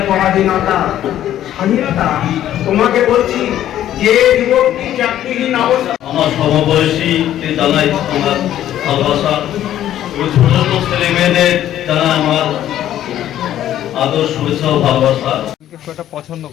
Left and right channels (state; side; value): quieter; right; 12.0 dB